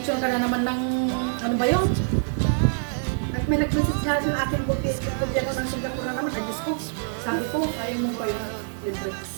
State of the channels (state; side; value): silent; left; digital silence